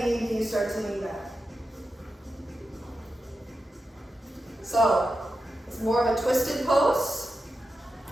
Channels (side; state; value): both; normal; correlation 0.90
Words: you start to lean back. So it's more of a twisted pose.